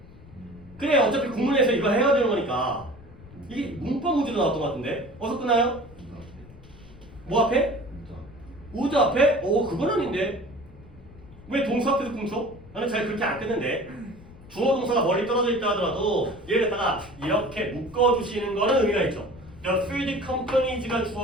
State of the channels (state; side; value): noise; left; rumble, 21 dB below the sound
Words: 그래 어차피 구문에서 이거 해야 되는 거니까 이게 문법 문제도 나왔던 것 같은데 어서 끊나요? 뭐 앞에? 우드 앞에? 그건 아닌데 왜 동사 앞에서 끊죠? 나는 잘 그렇게 안 끊는데 주어 동사가 멀리 떨어져 있다 하더라도 얘를 갖다가 이렇게 묶어주시는 거는 의미가 있죠. The field companies가